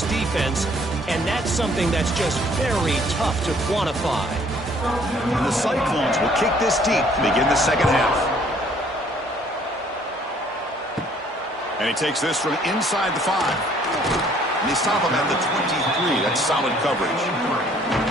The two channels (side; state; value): both; normal; correlation 0.60